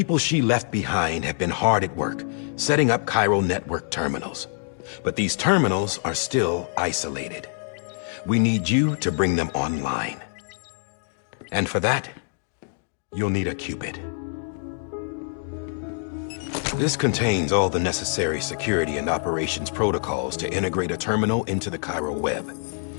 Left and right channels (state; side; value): silent; right; 62 dB below the other